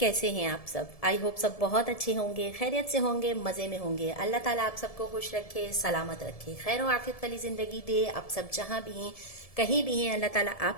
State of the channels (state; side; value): late; right; 1.7 ms